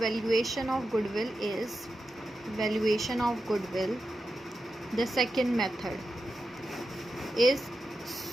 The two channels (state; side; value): normal; both; correlation 0.90